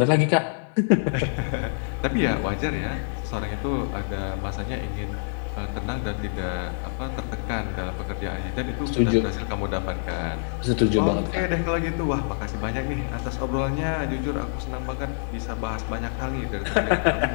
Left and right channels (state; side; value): silent; right; 55 dB below the other